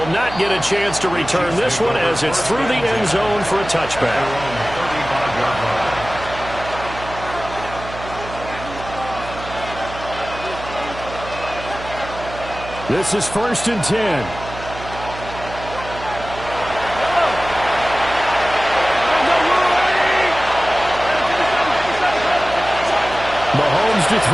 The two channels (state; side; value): noise; right; hum, 12 dB below the sound